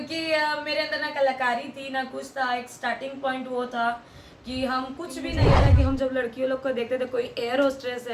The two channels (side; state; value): both; identical; correlation 1.00